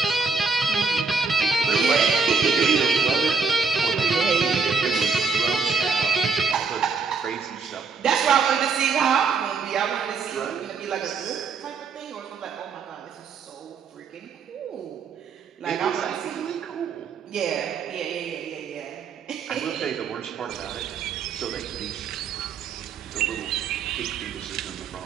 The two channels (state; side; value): quieter; left; 4.9 dB